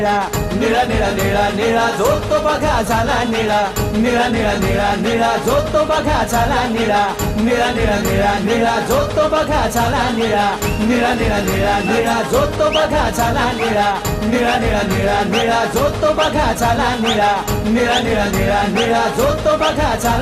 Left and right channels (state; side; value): identical; both; correlation 1.00